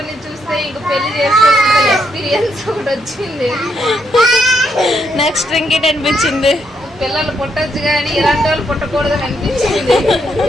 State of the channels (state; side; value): normal; both; correlation 0.76